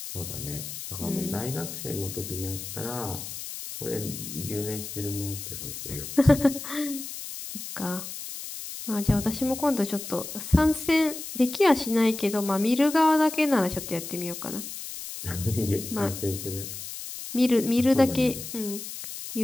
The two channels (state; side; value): noise; left; hiss, 9 dB below the sound